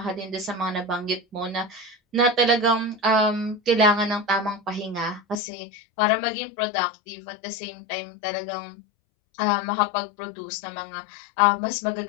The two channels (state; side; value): drops out; right; at 5.4 s